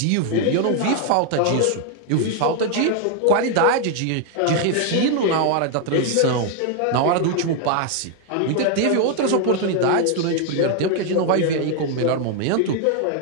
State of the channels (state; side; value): different; both; correlation 0.00